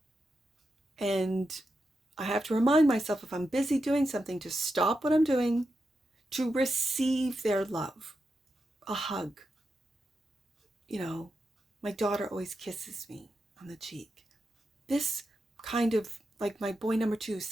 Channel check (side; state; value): both; normal; correlation 0.87